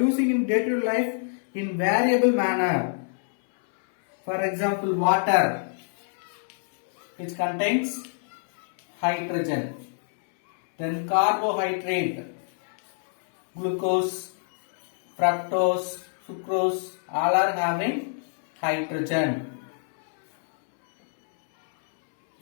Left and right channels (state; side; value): silent; right; 61 dB below the other